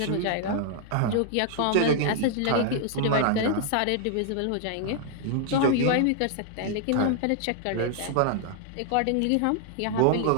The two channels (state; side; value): different; both; correlation 0.00